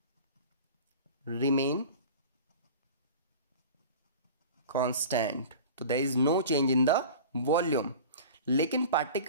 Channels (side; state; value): both; inverted; correlation -0.38